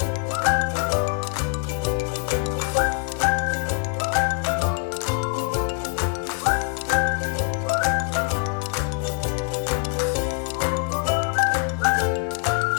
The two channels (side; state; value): right; quieter; 38.6 dB